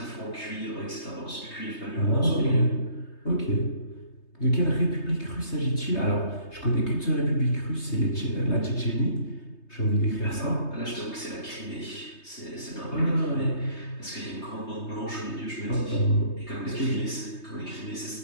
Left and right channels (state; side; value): late; right; 3.2 ms